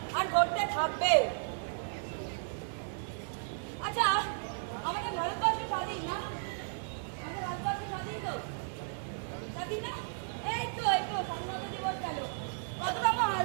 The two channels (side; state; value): left; silent; digital silence